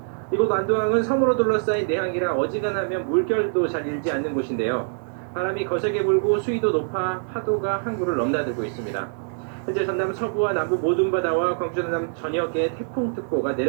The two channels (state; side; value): silent; left; digital silence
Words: 이곳 완도항은 섬으로 둘러싸인 내항이라 어지간하면 물결도 잘 일지 않는 곳인데요. 바람이 거세게 불고 수위도 높아 파도가 항구를 넘나들고 있습니다. 현재 전남 서부와 남부 모든 바다와 광주 전남 전역에 태풍특보가